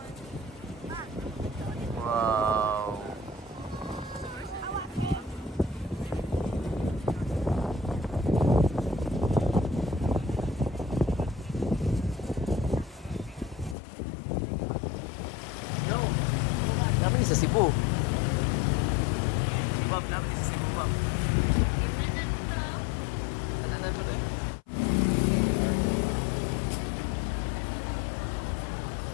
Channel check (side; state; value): right; drops out; at 13.8 s